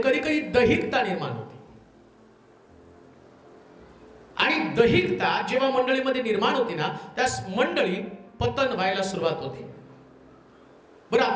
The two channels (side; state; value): both; identical; correlation 1.00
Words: कधी कधी दैहिकता निर्माण होते. आणि दैहिकता जेव्हा मंडळीमध्ये निर्माण होते ना, त्यास मंडळी पतन व्हायला सुरुवात होते. बरं,